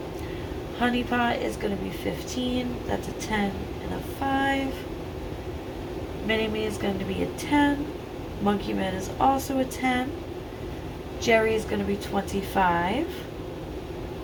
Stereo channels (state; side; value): identical; both; correlation 1.00